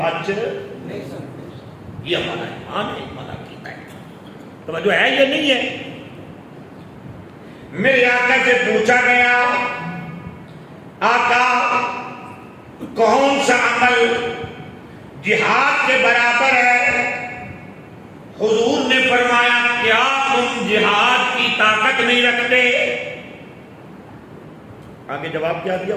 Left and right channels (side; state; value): both; identical; correlation 1.00